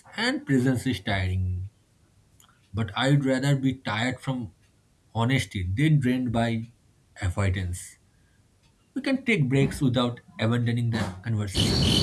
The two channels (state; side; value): identical; both; correlation 1.00